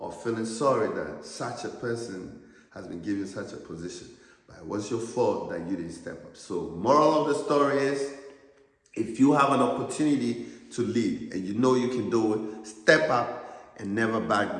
or feeling sorry that such a person has been given such a position. But it was your fault that you didn't step up. So moral of the story is, if you have an opportunity to lead and you know you can do it, step up and never back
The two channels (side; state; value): both; identical; correlation 1.00